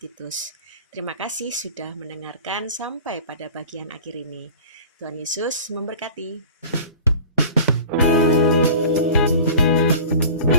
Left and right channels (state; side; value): inverted; both; correlation -0.40